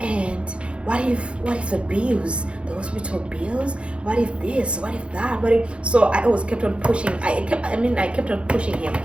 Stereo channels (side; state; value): left; late; 0.058 ms